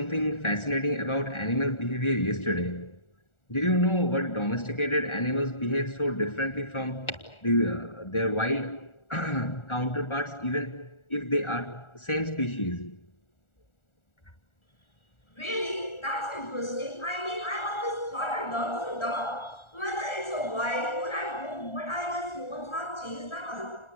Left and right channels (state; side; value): late; right; 1.4 ms